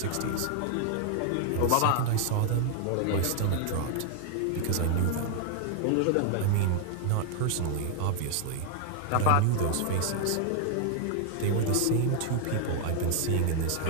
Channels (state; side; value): different; both; correlation 0.00